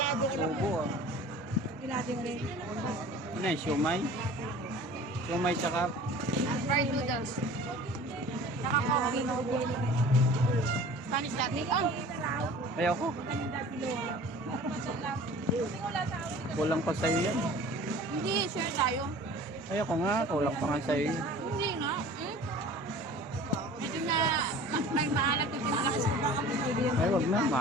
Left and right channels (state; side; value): normal; both; correlation 0.43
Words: ko lang. ubo ah. Arkilado rin. Ano yung siomay? Siomay tsaka Fried noodles. Saka coffee. Spanish latte. Oh, ayoko. Kulang pa sa'yo yan. hindi. Share tayo. Ayoko nga, kulang pa nga sa'yo. Hindi nga. Medyo na may maalat yung pinalakas ko baka pinagyan. Ay, wag na,